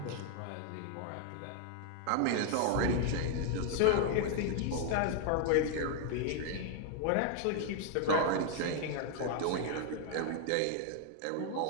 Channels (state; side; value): different; both; correlation 0.00